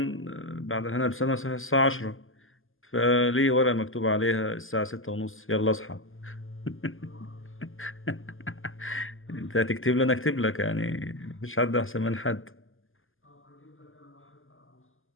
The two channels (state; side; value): late; right; 0.59 ms